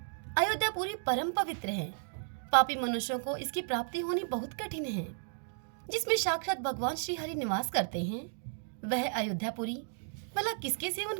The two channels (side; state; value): left; silent; digital silence